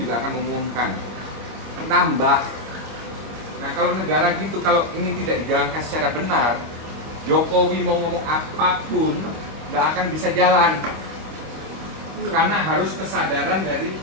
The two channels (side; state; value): left; late; 25 ms